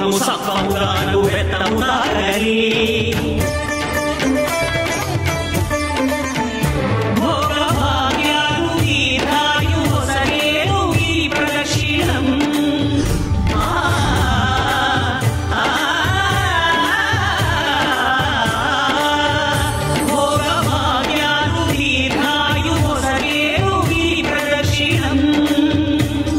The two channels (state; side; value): identical; both; correlation 1.00